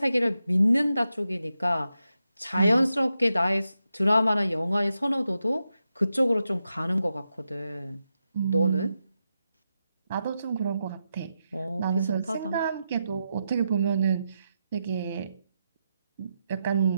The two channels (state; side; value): inverted; both; correlation -0.87